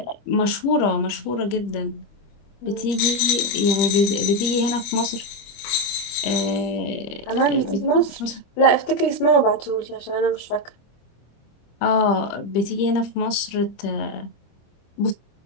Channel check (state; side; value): late; right; 25 ms